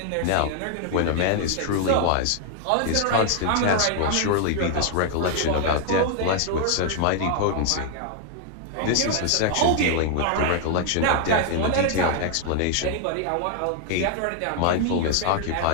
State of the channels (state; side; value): different; both; correlation 0.00